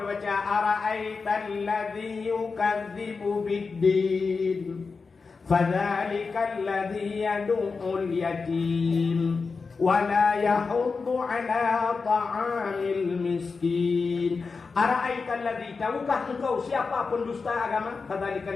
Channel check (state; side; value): quieter; right; 4.6 dB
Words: ara'aital ladzi yukadzibu biddin fadzalikal ladzi yad'ul yatim wala yahuddu ala ta'amil miskin. Ara'aital ladzi, tahukah engkau siapa pendusta agama?